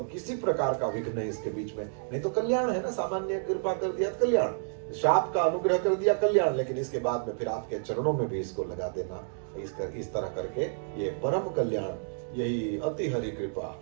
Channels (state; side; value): silent; left; digital silence